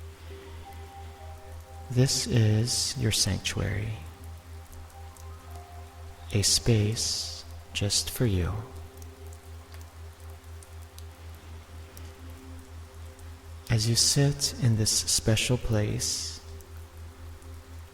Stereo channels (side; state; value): both; identical; correlation 1.00